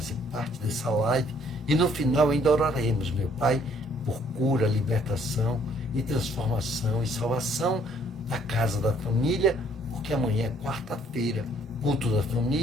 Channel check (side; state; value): both; normal; correlation 0.63